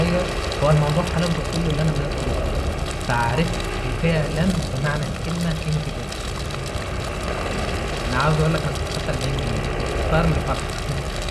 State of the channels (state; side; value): identical; both; correlation 1.00